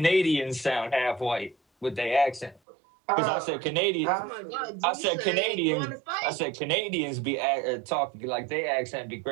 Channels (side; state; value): left; drops out; at 2.6 s